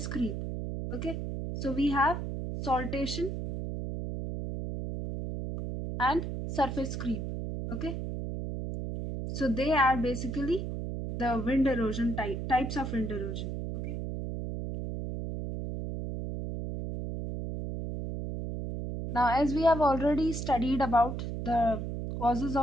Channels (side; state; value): right; noise; hum, 4 dB below the sound